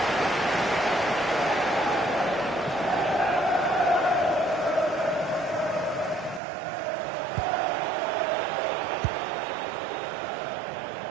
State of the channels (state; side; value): drops out; left; at 6.4 s